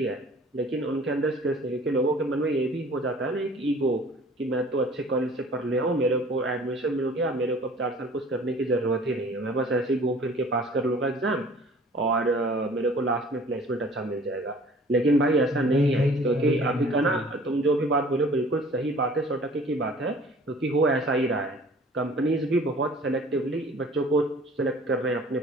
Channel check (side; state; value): both; normal; correlation 0.49